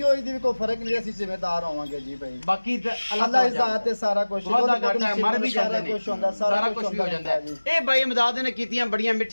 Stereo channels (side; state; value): both; inverted; correlation -1.00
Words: ਹੋਈ ਦੀ ਵੀ ਕੋਈ ਫਰਕ ਨਹੀਂ, ਅਸੀਂ ਜ਼ਿੰਮੇਦਾਰ ਹੋਵਾਂਗੇ ਜੀ ਭਾਈ। ਬਾਕੀ ਤਾਂ ਅੱਲਾ ਇਜ਼ਾਤ ਤੇ ਸਾਰਾ ਕੁਝ ਵਾਦਾ ਘਾਟਾ ਹੈ, ਮਰ ਵੀ ਜਾਂਦੇ ਨੇ, ਕੁਝ ਹੁੰਦਾ, ਸਾਰਾ ਕੁਝ ਵੀ ਹੋ ਜਾਂਦਾ ਹੈ। ਇਹ ਬਾਈ ਇਮਦਾਦ ਨੇ ਕੀਤੀਆਂ ਬੜੀਆਂ